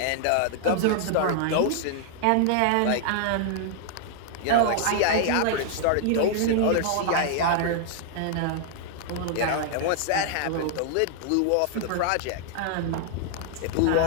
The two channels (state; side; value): different; both; correlation -0.01